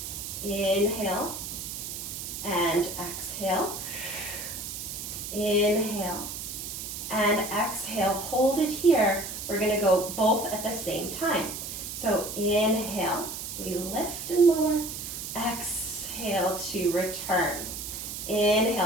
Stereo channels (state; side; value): noise; right; hiss, 7 dB below the sound